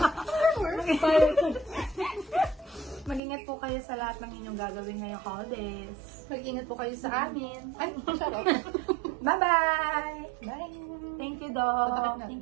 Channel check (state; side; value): drops out; left; at 3.2 s